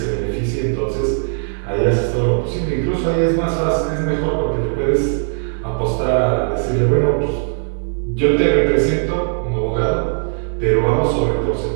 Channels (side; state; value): left; silent; digital silence